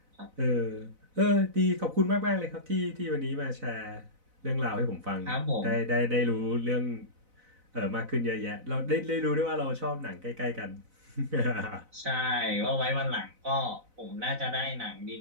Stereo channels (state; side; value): late; left; 4.0 ms